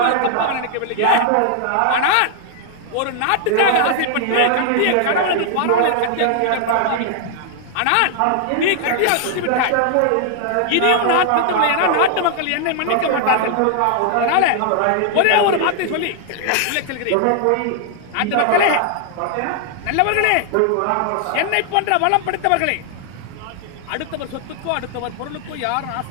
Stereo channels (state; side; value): different; both; correlation 0.00